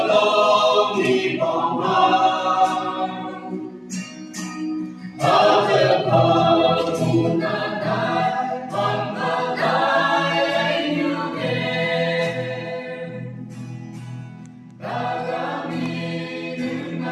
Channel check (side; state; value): both; identical; correlation 1.00